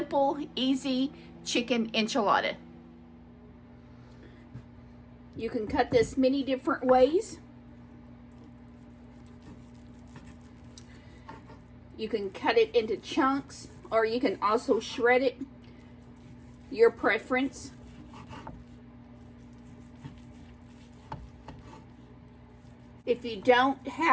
easy chicken enchilada. You can cut this many different ways. You can cut it into chunks or you can also shred it, your preference. If you don't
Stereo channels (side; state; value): both; identical; correlation 1.00